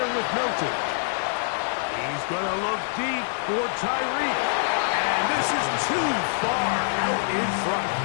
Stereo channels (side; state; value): right; silent; 61 dB below the other